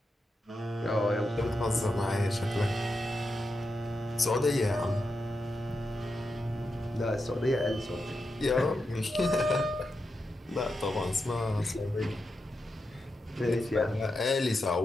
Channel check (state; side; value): normal; both; correlation 0.87